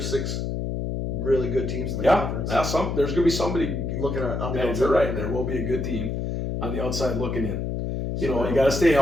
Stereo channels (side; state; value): left; noise; hum, 2 dB below the sound